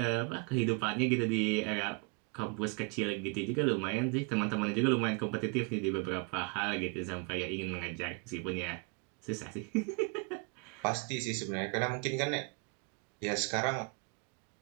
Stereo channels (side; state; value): left; quieter; 32.9 dB